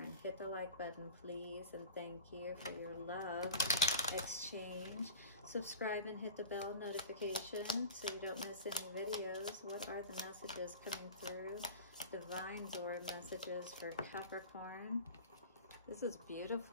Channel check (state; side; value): inverted; both; correlation -0.34